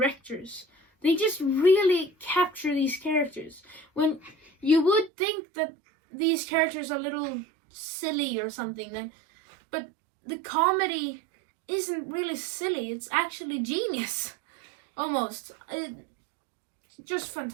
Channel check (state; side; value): drops out; left; at 5.1 s